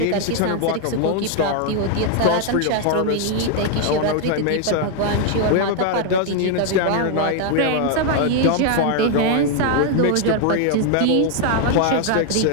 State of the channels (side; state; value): both; different; correlation 0.00